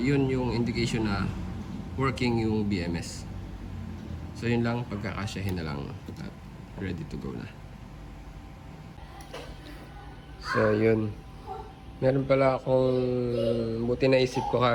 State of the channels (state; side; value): identical; both; correlation 1.00